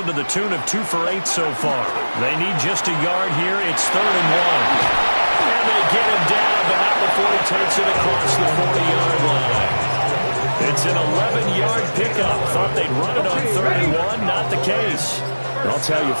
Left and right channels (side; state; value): both; inverted; correlation -1.00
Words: to the tune of 2 for 8 so far. They need just a yard here. It's 3rd and 1. And they get him down, but not before he takes it across the 40-yard line. It's an 11-yard pickup. Thought they'd run it on 3rd and 1. Not the case. I'll tell you,